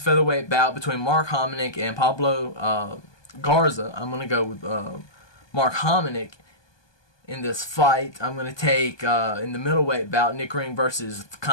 featherweight bout between Mark Hominick and Pablo Garza. I'm going to go with Mark Hominick in this fight. I'm going to take, in the middleweight bout, Nick Ring versus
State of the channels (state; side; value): late; right; 1.2 ms